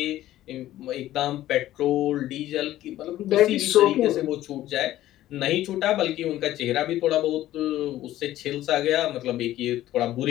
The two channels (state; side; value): quieter; right; 14.1 dB